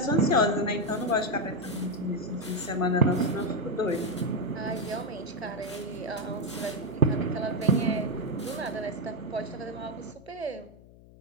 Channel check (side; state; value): left; noise; hum, 22 dB below the sound